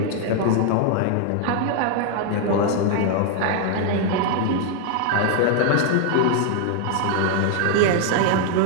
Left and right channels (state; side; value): different; both; correlation 0.00